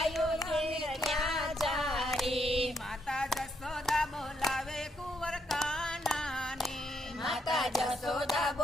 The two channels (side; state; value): both; normal; correlation 0.75